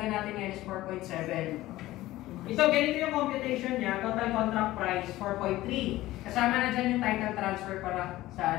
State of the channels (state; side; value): quieter; right; 16.6 dB